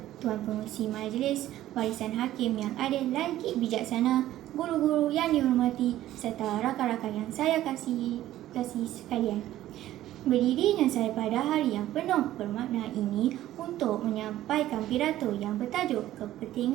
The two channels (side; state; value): left; quieter; 13.9 dB